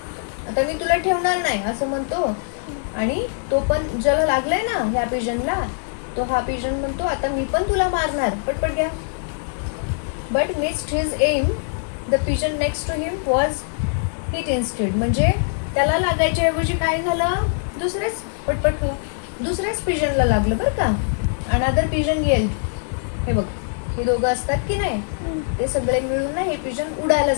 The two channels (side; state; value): right; silent; digital silence